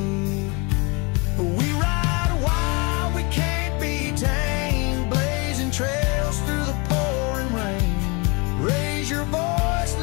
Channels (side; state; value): right; quieter; 29.8 dB